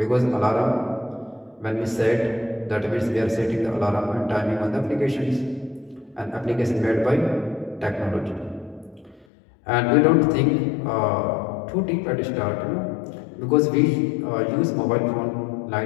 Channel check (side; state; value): right; drops out; at 9.2 s